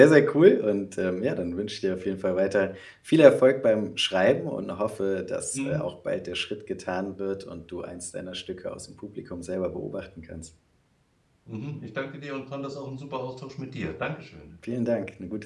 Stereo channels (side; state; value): both; identical; correlation 1.00